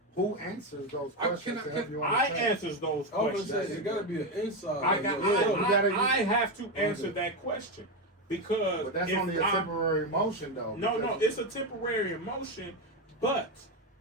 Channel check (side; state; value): both; normal; correlation 0.11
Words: who answers those questions to help you I understand? answers those I was questions. gonna say it gotta be an inside. I have to answer that question because But that's if only a temporary emotion though. No, because- it's a temporary emotion, but